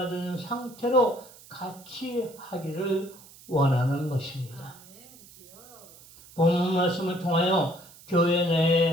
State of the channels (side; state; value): right; noise; hiss, 21 dB below the sound